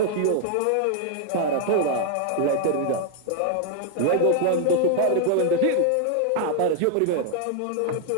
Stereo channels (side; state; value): both; different; correlation 0.00